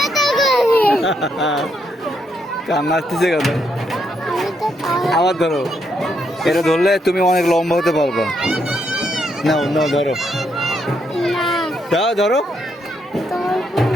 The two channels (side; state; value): both; normal; correlation 0.77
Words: কান্না আসতেছে কেন? আবার ধরো, এটা ধরলে তুমি অনেক লম্বা হতে পারবে। নাও নাও, ধরো, দাও, ধরো,